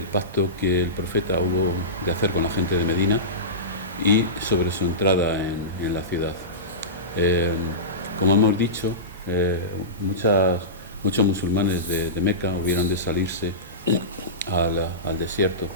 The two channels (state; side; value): normal; both; correlation -0.19